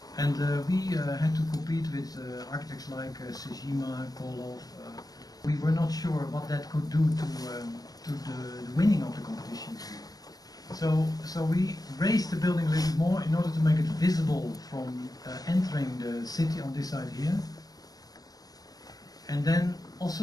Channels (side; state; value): right; late; 0.18 ms